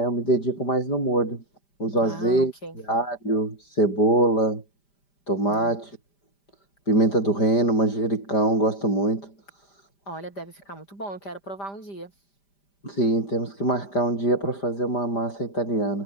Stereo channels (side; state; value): right; late; 5.0 ms